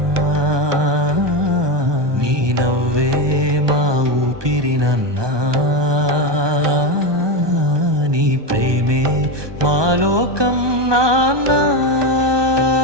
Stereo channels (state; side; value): late; left; 1.2 ms